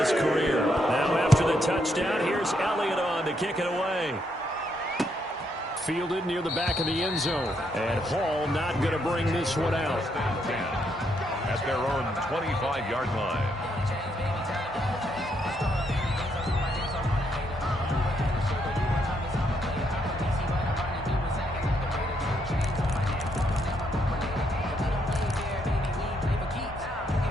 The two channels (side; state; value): both; normal; correlation 0.76